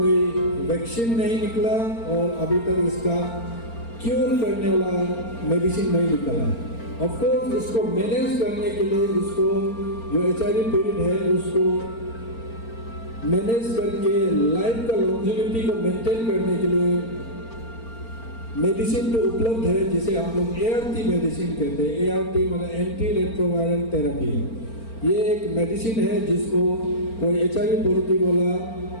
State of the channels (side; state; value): right; late; 4.4 ms